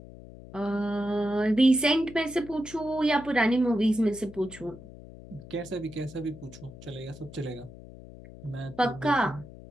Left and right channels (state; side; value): noise; left; hum, 17 dB below the sound